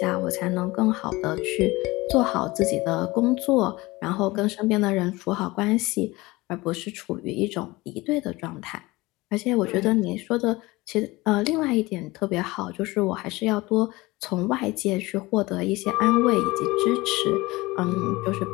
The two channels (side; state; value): right; quieter; 21.2 dB